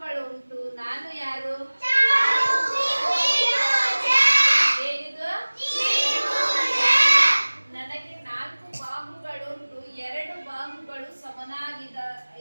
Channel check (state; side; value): inverted; both; correlation -1.00